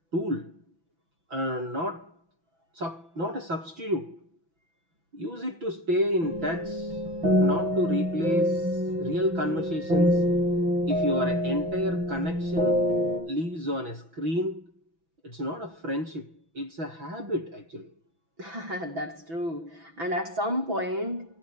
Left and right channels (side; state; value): left; late; 6.0 ms